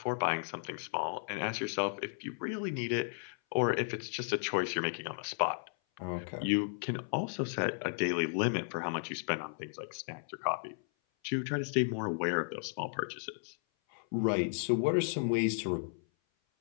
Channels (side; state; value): right; silent; 55 dB below the other